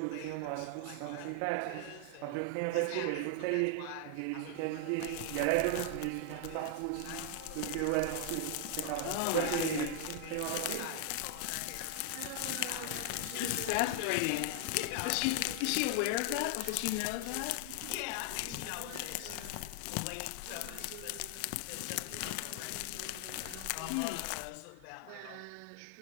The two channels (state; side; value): different; both; correlation 0.00